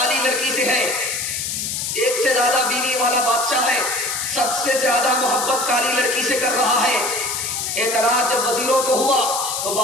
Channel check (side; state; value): left; noise; hiss, 2 dB below the sound